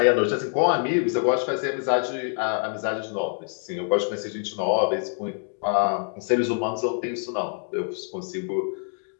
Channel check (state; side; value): silent; right; 57 dB below the other